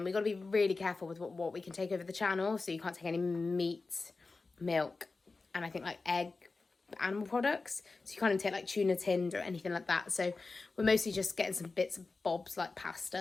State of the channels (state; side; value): quieter; right; 3.9 dB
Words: We've got to be really careful with what we can take over the channel, so you can't take any meat, milk, and I think like egg, animal products. So you can't even take like tuna tinned or anything like that. So we're mostly just getting some bits of bobs like